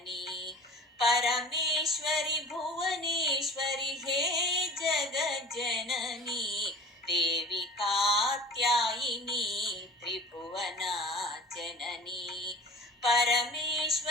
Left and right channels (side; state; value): both; normal; correlation 0.41